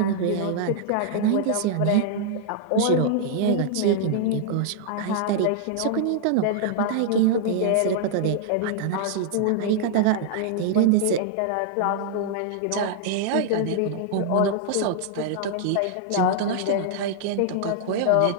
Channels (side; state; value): both; different; correlation -0.01